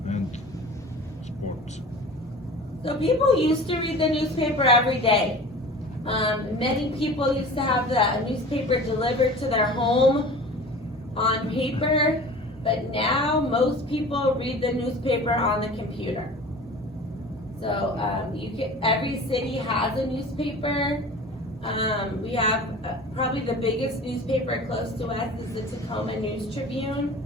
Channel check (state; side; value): normal; both; correlation 0.39